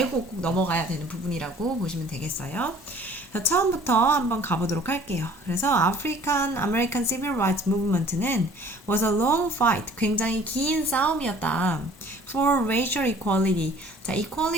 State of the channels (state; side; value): normal; both; correlation 0.52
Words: 꼭 넘어가야 되는 부분이라고 보시면 되겠어요. 처음부터 한번 가보도록 할게요. 그래서 African American Civil Rights Movement는 was a long fight, 굉장히 긴 싸움이었다. For racial equality. 자,